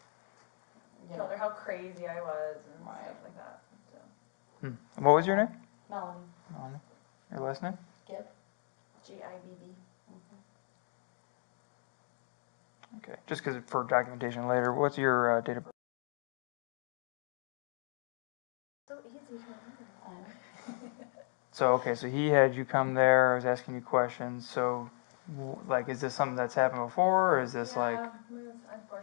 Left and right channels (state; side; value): silent; right; 54 dB below the other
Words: Told her how crazy I was and Right. stuff like that. So. What was your name? Melni Your last name? Gibb. Gibb. Okay, just because for documentation later, what's your date of birth? So easy to remember. So, okay, so he had you come there, I was asking you questions, so, like, is this something that's happened before, or is this like?